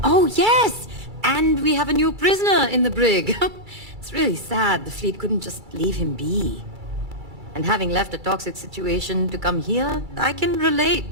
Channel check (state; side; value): late; left; 2.3 ms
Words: Oh, yes! And we have a new prisoner in the brig. It's really sad the fleet couldn't just leave him be. And having left a toxic situation to come here, I can relate